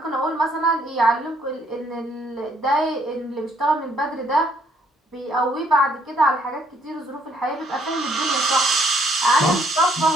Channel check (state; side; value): normal; both; correlation 0.67